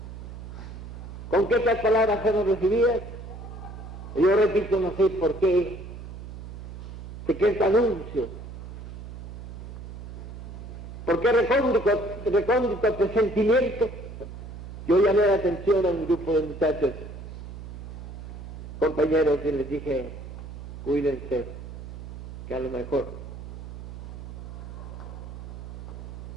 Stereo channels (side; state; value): right; noise; hum, 11 dB below the sound